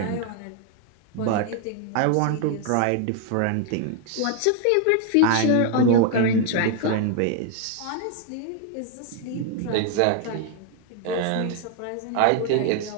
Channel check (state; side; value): different; both; correlation 0.00